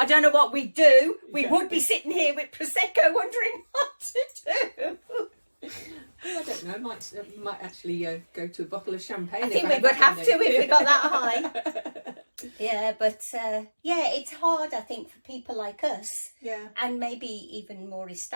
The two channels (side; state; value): both; inverted; correlation -1.00